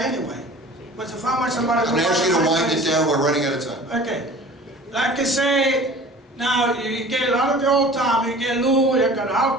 anyway. But if I want somebody to... I'm gonna ask you to wind it down, we're running out of time. Okay. Like I say, now you get a lot of the old time, you get Lou, you got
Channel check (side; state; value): both; normal; correlation 0.44